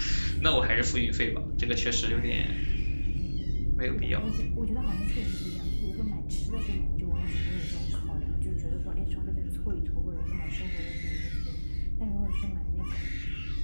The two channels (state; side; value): inverted; both; correlation -1.00